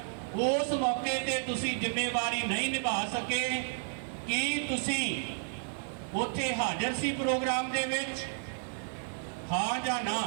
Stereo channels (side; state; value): left; silent; digital silence